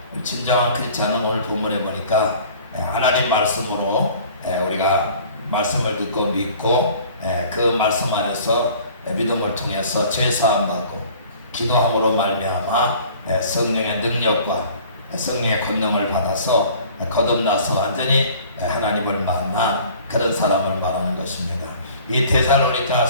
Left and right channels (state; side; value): inverted; both; correlation -0.49